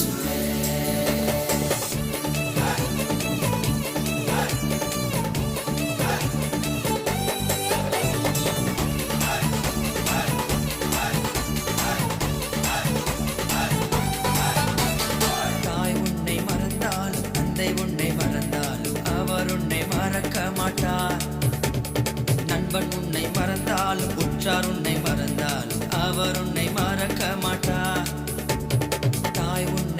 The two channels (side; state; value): both; identical; correlation 1.00